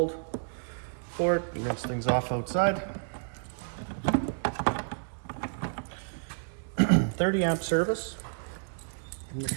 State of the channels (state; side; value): silent; left; digital silence